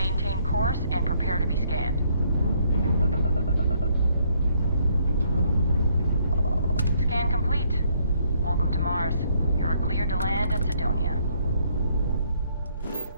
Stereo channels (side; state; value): both; inverted; correlation -0.69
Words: course and prepare to be scanned. Scan complete. Welcome to Mars. You're cleared to land at Sidonia.